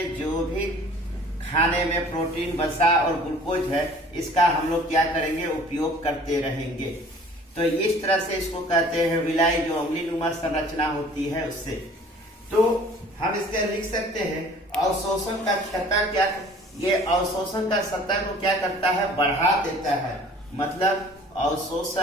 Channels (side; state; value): both; normal; correlation 0.50